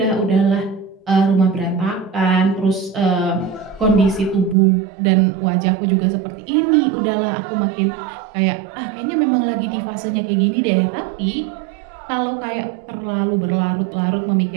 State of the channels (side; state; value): left; drops out; at 4.5 s